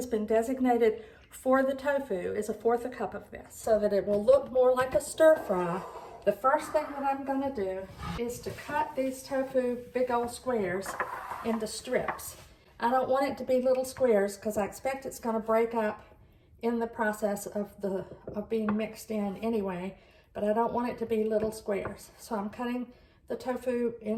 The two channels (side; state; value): both; identical; correlation 1.00